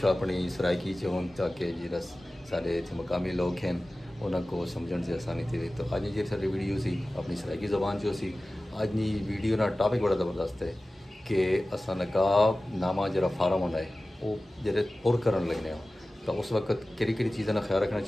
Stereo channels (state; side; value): normal; both; correlation 0.96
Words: अपनी सराइकी च होन, ताकि जिस सारे इतने मकामी लोग हैं उनको समझने से आसानी थी। तो अज जी सारी वीडियो सी अपनी सराइकी ज़बान चो सी। अज की वीडियो ना टॉपिक बड़ा ज़बरदस्त है कि असा नकाब नामा जरा फार्म होना है वो जरे पुर कर लगने हो, तो उस वक्त कि चीज़ों का ख्याल रखना